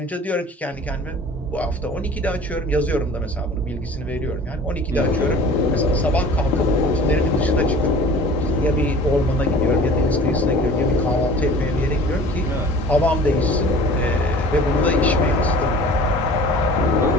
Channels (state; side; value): normal; both; correlation 0.44